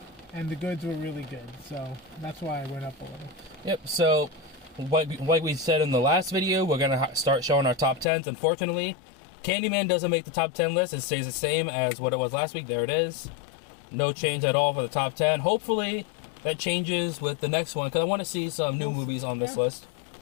the goods were really good, so that's why I went up a little. Yep. So, like we said in the last video, we're gonna start showing our top 10s. Unfortunately, Candyman doesn't make the top 10 list. It stays the same as what it was last week. There it is. No change at all for the top 10. Hopefully that changes with the next one, because I want to see some new movies on this list.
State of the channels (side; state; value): right; drops out; at 8.1 s